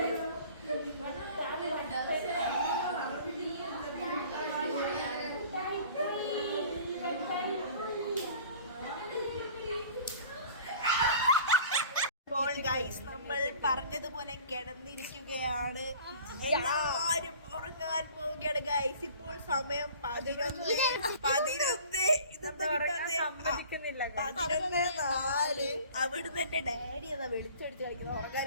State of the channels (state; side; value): inverted; both; correlation -0.47